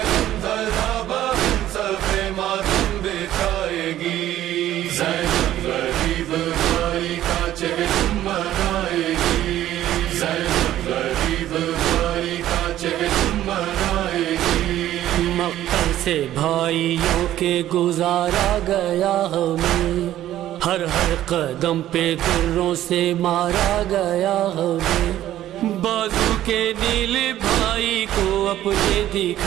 غمزدہ بہن صفے ماتم بچھائے گی، زینب غریب بھائی کا چہر منائے گی، زینب غریب بھائی کا چہر منائے گی۔ مقتل سے بھائیوں کے گزارا گیا ہمیں، ہر ہر قدم پہ دروں سے مارا گیا ہمیں، بازو کے نیل بھائی کو اپنے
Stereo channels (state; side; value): quieter; left; 13.0 dB